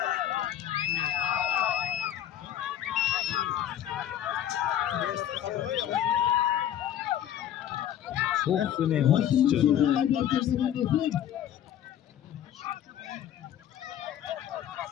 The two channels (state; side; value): quieter; right; 10.8 dB